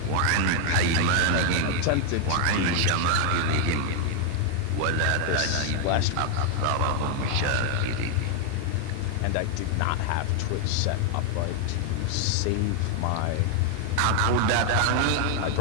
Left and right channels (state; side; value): different; both; correlation 0.00